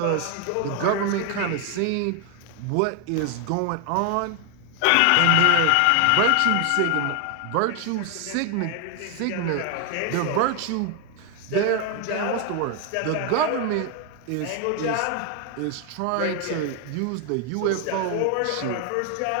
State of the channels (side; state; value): both; different; correlation 0.01